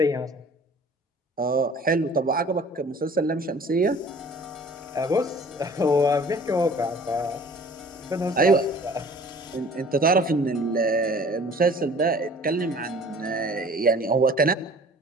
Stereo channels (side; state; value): both; normal; correlation 0.49